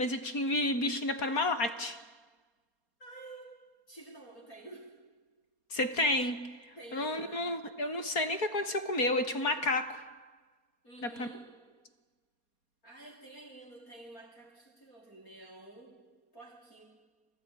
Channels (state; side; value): late; right; 4.3 ms